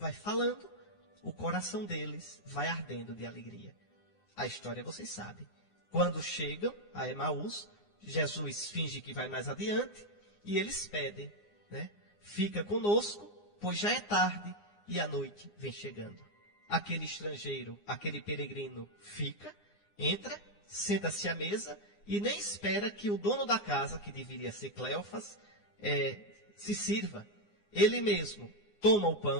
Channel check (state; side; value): late; right; 9.7 ms